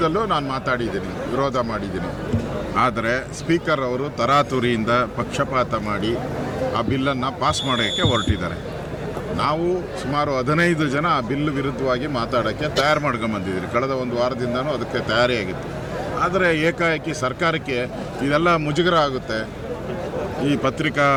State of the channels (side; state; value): both; identical; correlation 1.00